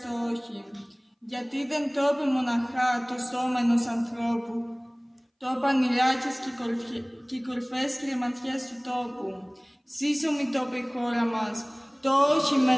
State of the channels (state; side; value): identical; both; correlation 1.00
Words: το όχι. Γιατί δεν το είπε μοναχά το σώμα ενός ανθρώπου, το είπαν οι ράκες και οι κορυφές κρεμματιές του τόπου. Σύσσωμη το είπε η χώρα μας, το όχι με